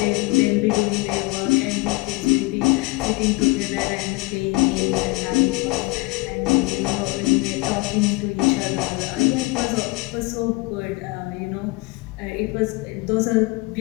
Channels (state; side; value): quieter; right; 24.6 dB